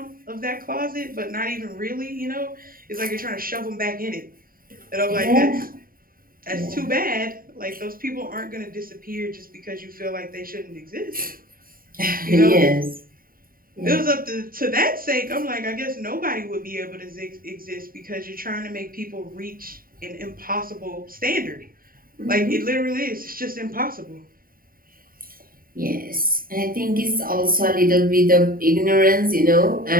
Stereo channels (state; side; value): late; left; 0.42 ms